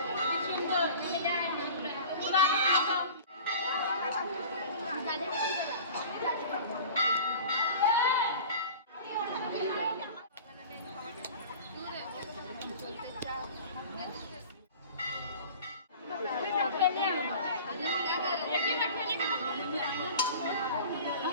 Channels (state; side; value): inverted; both; correlation -0.40